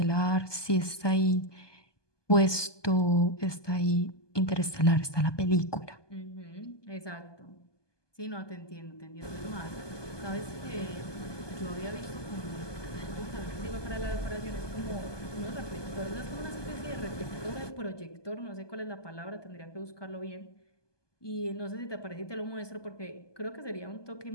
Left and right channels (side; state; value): right; late; 1.2 ms